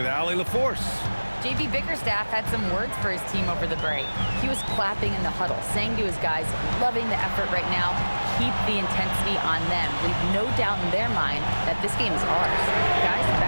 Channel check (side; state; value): both; inverted; correlation -1.00